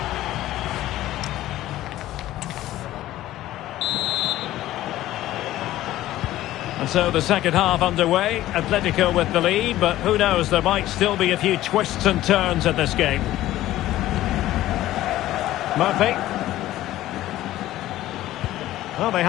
And so the second half underway. Atletico with the lead, but who knows, there might still be a few twists and turns in this game. Murphy. Well, they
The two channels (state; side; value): quieter; right; 14.8 dB